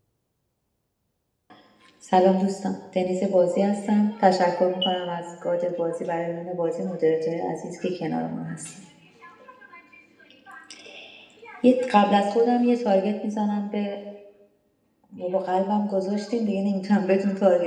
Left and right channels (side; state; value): both; identical; correlation 1.00